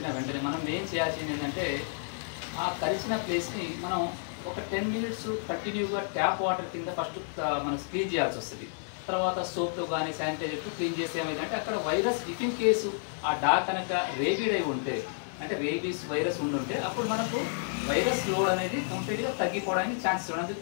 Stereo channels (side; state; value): right; silent; digital silence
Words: వెంటనే మనం ఏం చేయాల్సింది ఏంటంటే ఆ కరిచిన ప్లేస్ని మనం ఒక 10 minutes కంటిన్యూగా ట్యాప్ వాటర్ కింద ఫస్ట్ మనం క్లీన్ చేయాల్సి వస్తుంది. తర్వాత సోప్తో కానీ శానిటైజర్తో క్లీన్ చేస్తే ఏమైందంటే అక్కడ వైరస్ ఇఫ్ ఇన్ కేసు ఆ డాగ్ కనుక రేబిడ్ అయి ఉంటే, అంటే రేబీస్ వైరస్ ఉండుంటే అప్పుడు మనకు వైరస్ లోడ్ అనేది కంప్లీట్గా తగ్గిపోవడానికి ఛాన్సెస్ ఉంది.